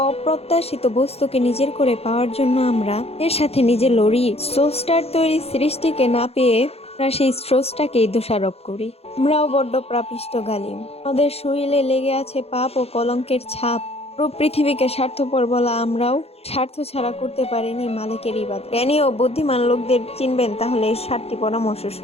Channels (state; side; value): late; right; 0.29 ms